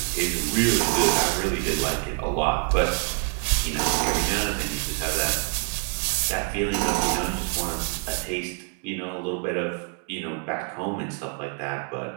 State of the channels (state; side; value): quieter; left; 35.5 dB